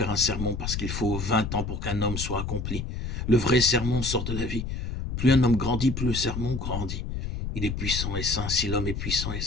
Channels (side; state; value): left; noise; rumble, 4 dB below the sound